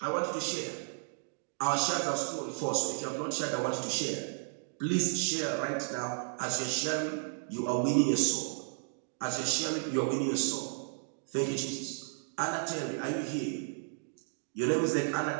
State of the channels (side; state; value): left; silent; digital silence